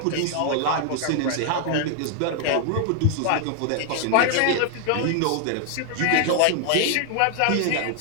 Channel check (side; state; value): both; different; correlation 0.00